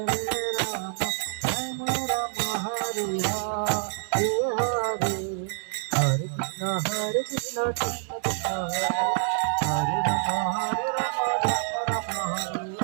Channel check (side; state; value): left; silent; digital silence